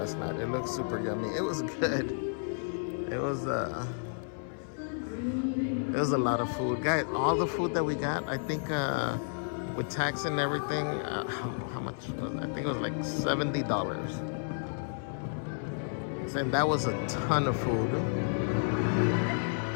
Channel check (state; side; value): silent; right; 57 dB below the other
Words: night? It looked super yummy. It was good. It was a lot of food. Guys, all the food that we got, I think with tax and everything, how much was it? I think it was like $70. And that was a ton of food.